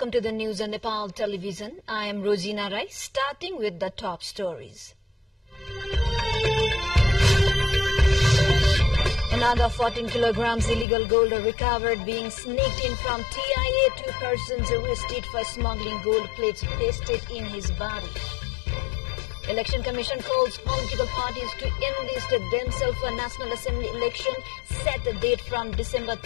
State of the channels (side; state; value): right; drops out; at 10.9 s